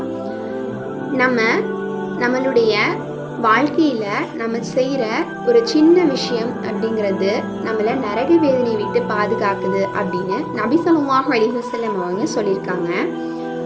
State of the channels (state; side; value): identical; both; correlation 1.00